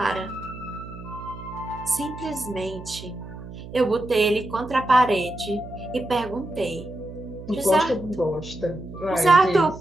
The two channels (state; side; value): noise; right; hum, 13 dB below the sound